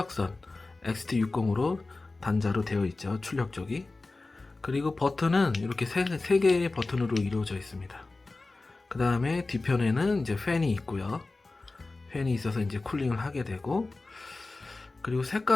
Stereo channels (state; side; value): quieter; right; 3.4 dB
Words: XT60으로 단자로 되어 있죠. 출력 쪽이. 그리고 버튼은 이렇게 3개의 버튼으로 이루어져 있습니다. 그 다음에 뒤편에는 이제 팬이 있고요. 팬이 있어서 이제 쿨링을 하게 되고, 그리고